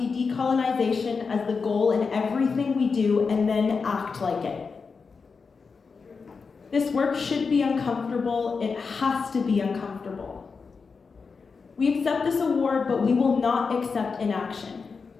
decolonization as the goal in everything we do and then act like it. This work should be uncomfortable. It has to be uncomfortable. We accept this award, but we will not accept inaction.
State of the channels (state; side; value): quieter; right; 5.0 dB